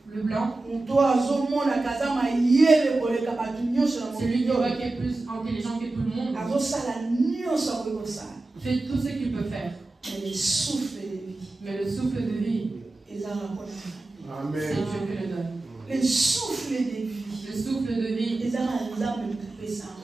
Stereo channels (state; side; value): quieter; left; 3.1 dB